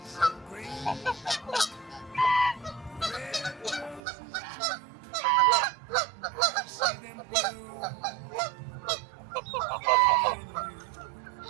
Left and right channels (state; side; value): drops out; left; at 4.0 s